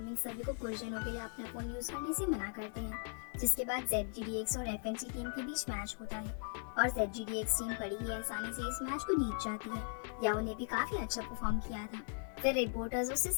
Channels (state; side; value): silent; right; 52 dB below the other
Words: सभी को कुछ दिनों के लिए अपना फोन यूज करने से मना करते हैं, जिसके बाद ZGDX और FNC टीम के बीच मैच होता है और ZGDX टीम बड़ी ही आसानी से इस मैच को जीत जाती है। याओ ने भी काफी अच्छा परफॉर्म किया था। फिर रिपोर्टर्स उससे